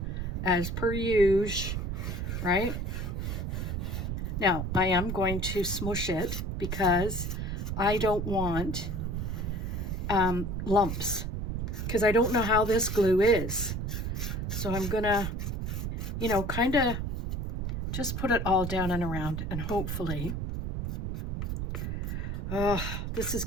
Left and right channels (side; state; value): right; noise; rumble, 2 dB below the sound